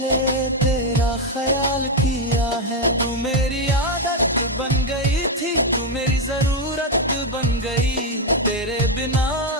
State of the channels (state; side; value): normal; both; correlation 0.04